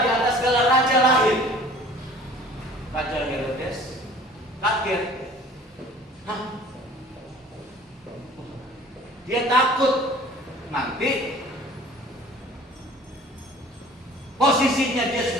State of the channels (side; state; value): both; normal; correlation 0.48